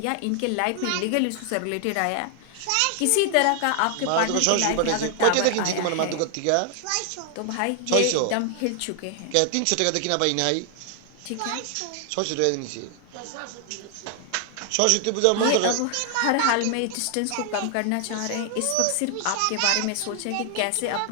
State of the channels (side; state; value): both; different; correlation 0.00